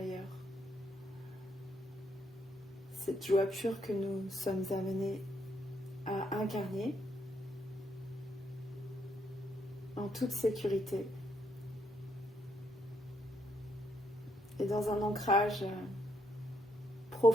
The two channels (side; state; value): both; normal; correlation 0.75